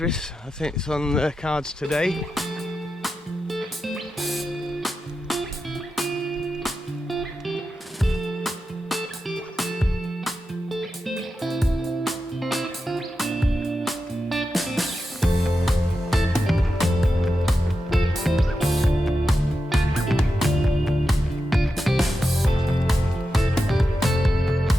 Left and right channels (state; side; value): normal; both; correlation 0.89